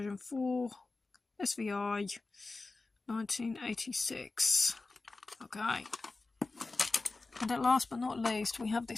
4, SVI 1986. Okay. And at last but not least, we have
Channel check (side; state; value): right; quieter; 3.5 dB